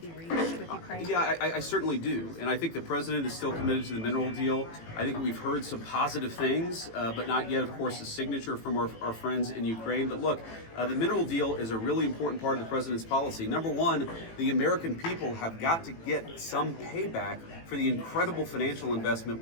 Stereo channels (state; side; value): late; right; 18 ms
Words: reached with Ukraine? Yeah, I certainly do. And I think the president is still committed to the mineral deal. I think we've heard some positive things, but not yet, of course, a signature from our friends in Ukraine. But look, the mineral deal is a really important part of the president's policy. Number one, the American people have got to get some payback for the incredible financial investment